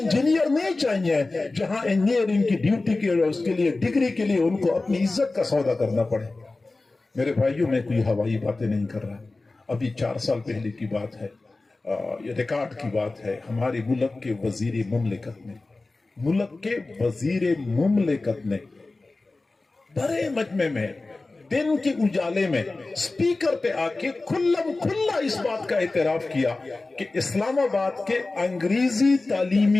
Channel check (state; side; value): quieter; right; 3.3 dB